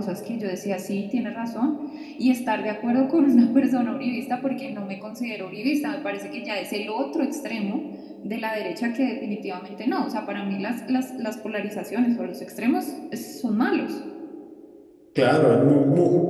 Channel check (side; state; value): both; identical; correlation 1.00